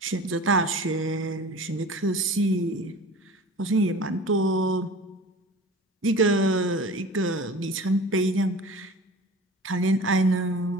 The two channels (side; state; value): both; normal; correlation 0.39